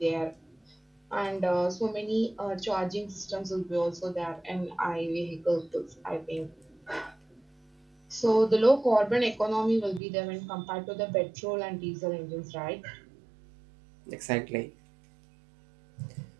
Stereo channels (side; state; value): left; drops out; at 10.0 s